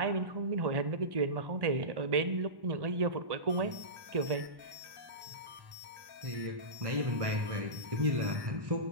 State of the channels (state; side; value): late; left; 1.1 ms